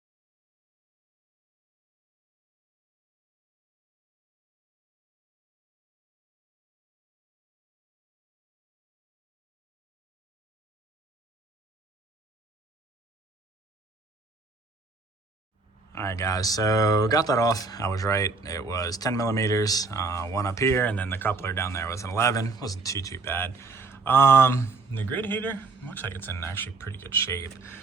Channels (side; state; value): left; quieter; 4.0 dB